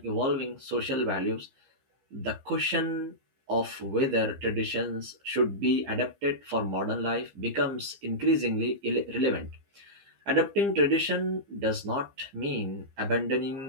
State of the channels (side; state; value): left; late; 15 ms